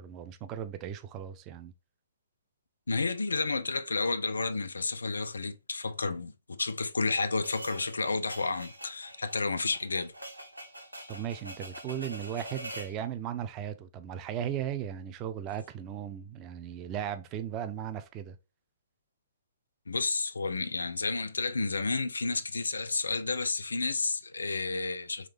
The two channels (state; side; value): inverted; both; correlation -0.75